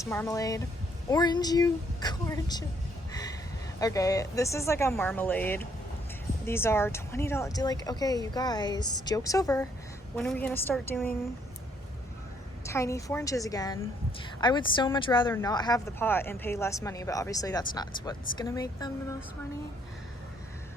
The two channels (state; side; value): normal; both; correlation 0.68